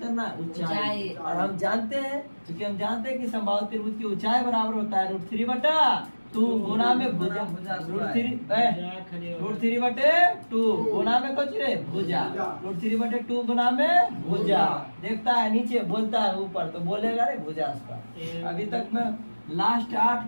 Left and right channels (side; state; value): both; inverted; correlation -1.00